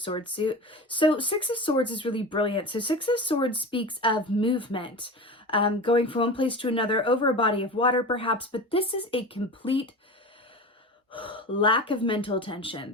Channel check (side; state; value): both; normal; correlation 0.30